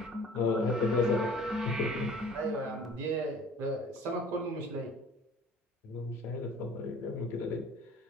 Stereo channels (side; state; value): both; normal; correlation 0.48